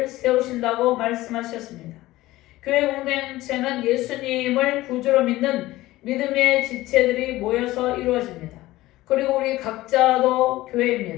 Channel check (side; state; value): right; quieter; 17.3 dB